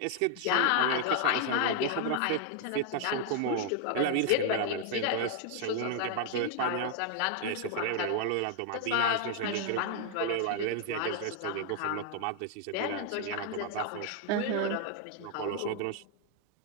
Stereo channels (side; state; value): both; different; correlation 0.00